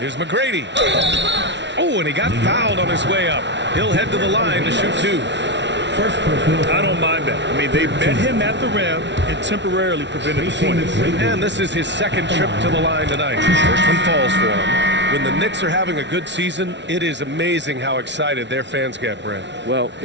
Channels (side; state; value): left; late; 0.51 ms